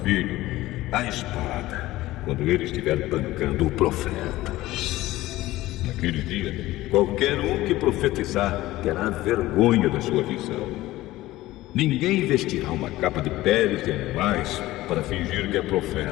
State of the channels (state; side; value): quieter; right; 17.0 dB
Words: filho à espada quando ele estiver bancando o profeta. Naquele dia, qualquer um que profetizar terá vergonha da sua visão. Ninguém vestirá uma capa de peles de animais para fingir que é